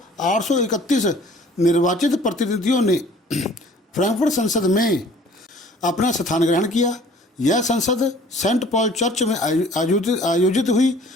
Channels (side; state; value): both; normal; correlation 0.52